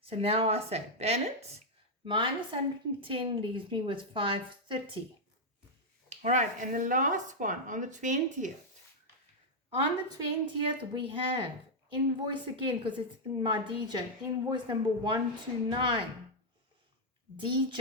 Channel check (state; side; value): normal; both; correlation -0.02